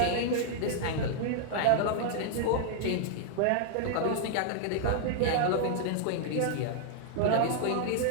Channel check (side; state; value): both; different; correlation -0.01